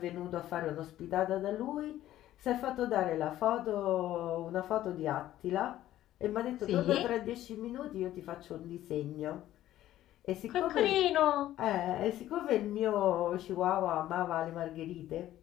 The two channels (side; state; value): right; quieter; 13.5 dB